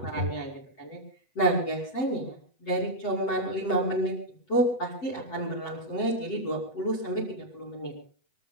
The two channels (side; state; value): right; late; 8.0 ms